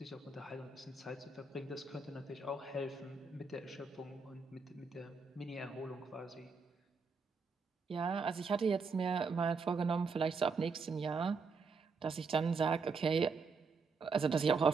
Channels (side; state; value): left; quieter; 4.6 dB